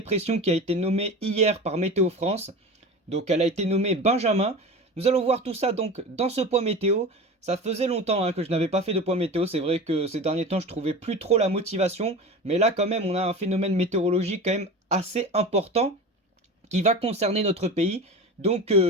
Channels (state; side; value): normal; both; correlation 0.31